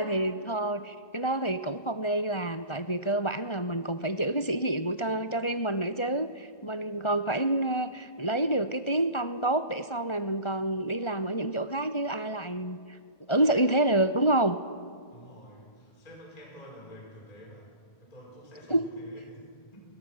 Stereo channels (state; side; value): late; right; 1.4 ms